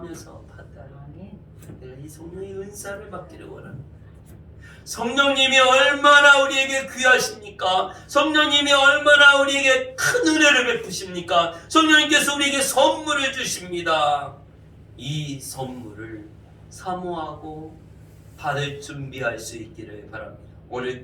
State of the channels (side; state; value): both; identical; correlation 1.00